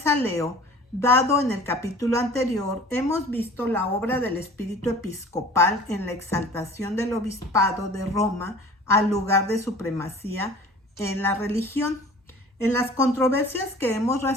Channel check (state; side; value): normal; both; correlation 0.45